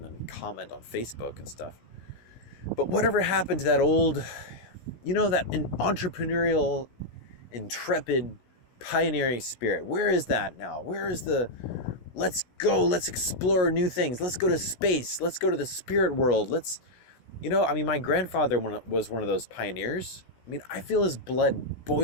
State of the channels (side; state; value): right; late; 16 ms